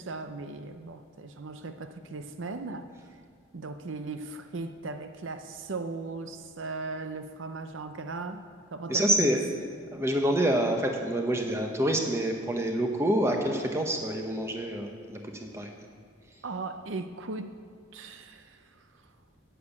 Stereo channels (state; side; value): normal; both; correlation 0.52